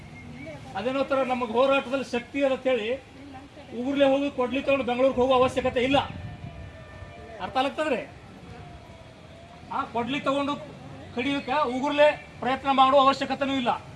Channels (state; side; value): identical; both; correlation 1.00